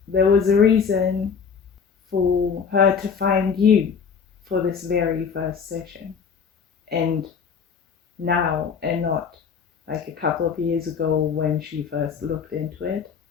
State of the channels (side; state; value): right; quieter; 6.3 dB